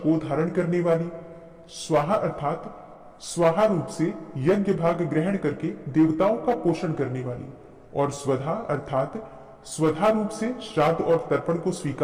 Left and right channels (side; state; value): both; identical; correlation 1.00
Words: धारण करने वाली, स्वाहा अर्थात स्वाहा रूप से यज्ञ भाग ग्रहण करके देवताओं का पोषण करने वाली, और स्वधा अर्थात स्वधा रूप से श्राद्ध और तर्पण को